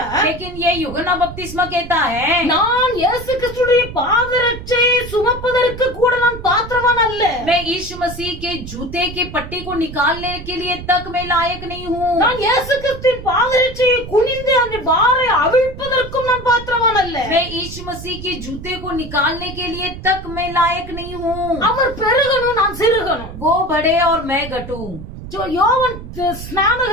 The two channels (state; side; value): noise; right; rumble, 12 dB below the sound